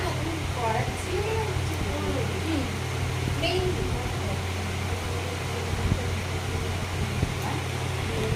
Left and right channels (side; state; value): both; identical; correlation 1.00